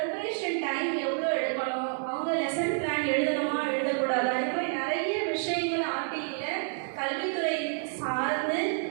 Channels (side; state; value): left; silent; 59 dB below the other